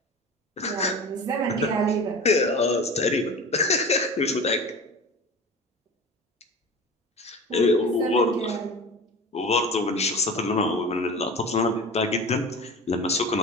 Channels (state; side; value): normal; both; correlation 0.34